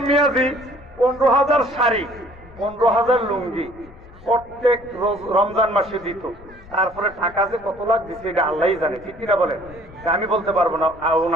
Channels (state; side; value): noise; left; rumble, 21 dB below the sound